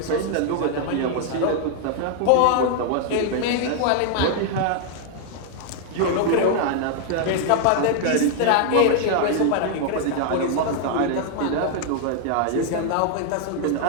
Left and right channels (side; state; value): both; different; correlation 0.00